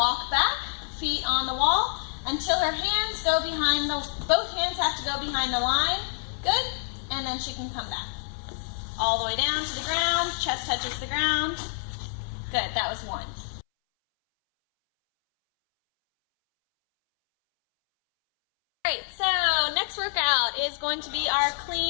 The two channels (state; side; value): silent; right; 60 dB below the other